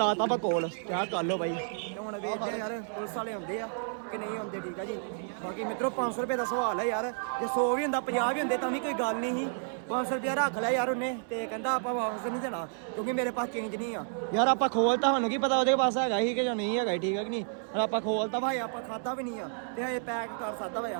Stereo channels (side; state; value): left; silent; 57 dB below the other